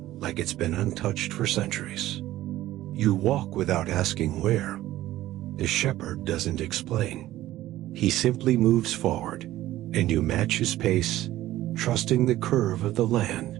it's been untouched for centuries. You walk without asking where. The shepherd doesn't explain. He simply moves forward, and you match his pace, trusting the curve of the land,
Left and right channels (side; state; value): left; quieter; 14.9 dB